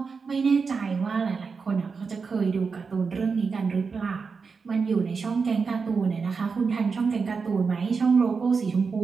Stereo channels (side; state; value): left; quieter; 5.1 dB